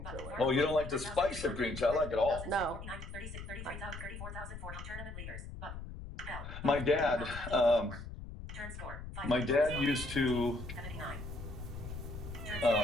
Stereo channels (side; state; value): left; noise; rumble, 10 dB below the sound